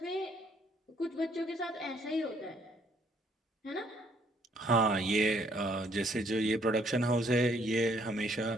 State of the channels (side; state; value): both; normal; correlation 0.66